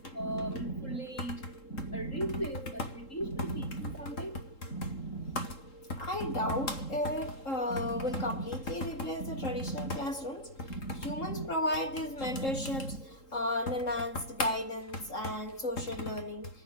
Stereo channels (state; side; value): late; right; 3.8 ms